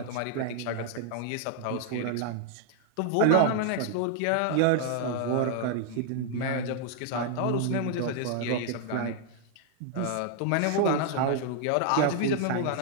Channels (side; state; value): both; different; correlation 0.00